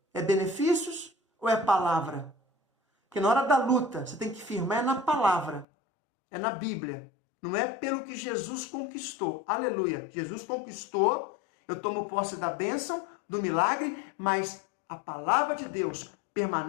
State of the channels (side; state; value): right; drops out; at 5.7 s